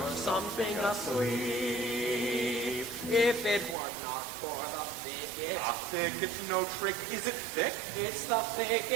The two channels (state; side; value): drops out; left; at 3.8 s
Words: something asleep. If it were not for the thicket. A thicket's no trick. Is it thick? It's the